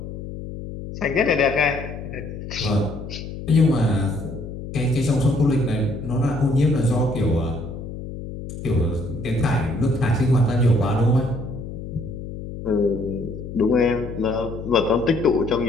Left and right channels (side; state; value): left; noise; hum, 9 dB below the sound